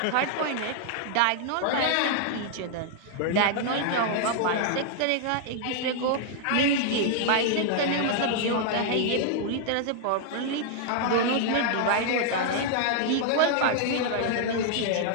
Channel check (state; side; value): different; both; correlation 0.00